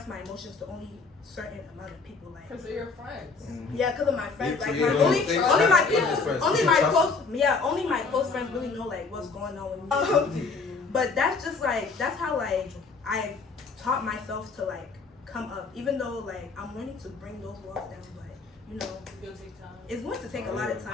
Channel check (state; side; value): quieter; right; 4.4 dB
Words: my emotions to only certain amount of people, like because they're your friends. Yeah, because of my friends, like Yeah, only my people, only my trust. only my close friends really know like what's going on with me. But that's just like that's how like I taught myself to like come up, even though like I'm learning to bring those walls down, but you know, it's going to take a lot of time.